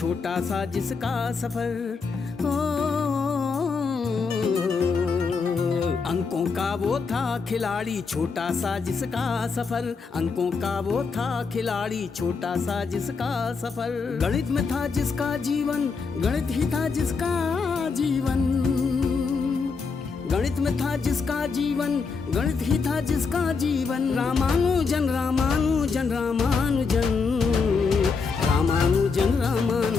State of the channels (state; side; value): quieter; right; 4.9 dB